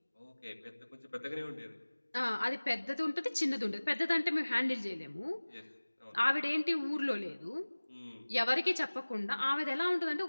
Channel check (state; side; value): inverted; both; correlation -1.00